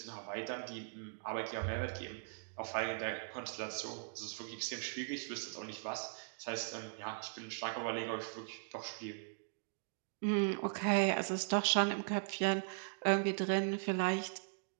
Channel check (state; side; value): silent; left; digital silence